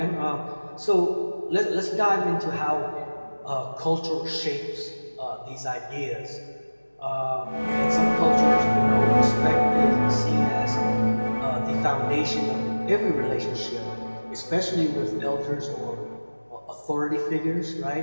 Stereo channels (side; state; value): both; inverted; correlation -1.00